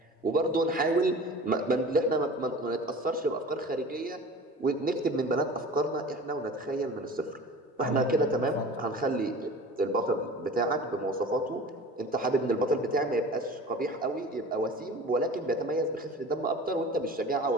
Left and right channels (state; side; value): normal; both; correlation 0.39